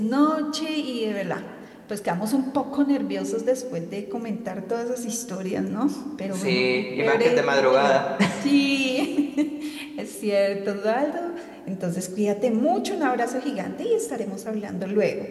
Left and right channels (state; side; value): identical; both; correlation 1.00